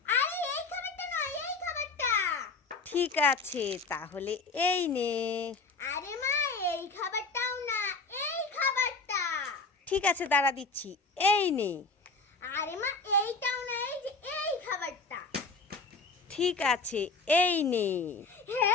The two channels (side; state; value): right; quieter; 4.0 dB